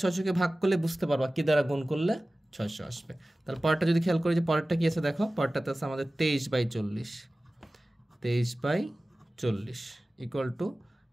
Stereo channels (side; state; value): both; normal; correlation 0.97